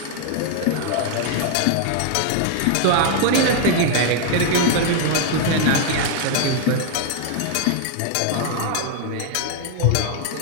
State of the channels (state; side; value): different; both; correlation 0.00